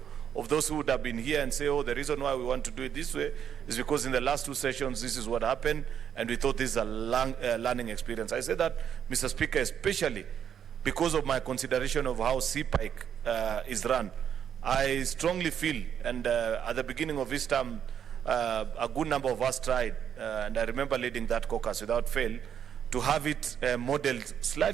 of those who would have been here and say, oh, the reason why we want to do it this way is because in the last two sessions this is what happened and we thought this is a learning experience. I say that, Mr. Speaker, especially because of my consideration of how CPIC is run. I strongly feel, and at the beginning of this term, a good number of us tried, and I remember leading that caucus without fail, to have it modeled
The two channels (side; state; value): left; quieter; 8.6 dB